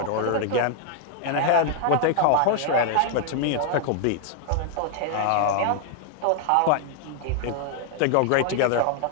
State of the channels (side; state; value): both; different; correlation 0.00